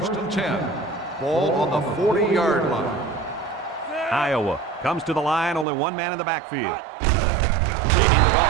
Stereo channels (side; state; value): left; drops out; at 5.7 s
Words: and 10. Ball on the 40-yard line. Iowa comes to the line, only one man in the backfield. They hand it